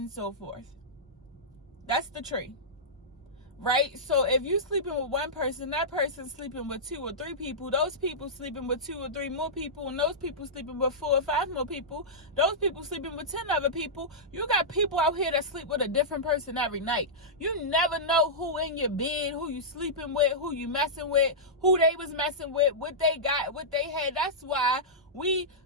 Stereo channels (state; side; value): normal; both; correlation -0.13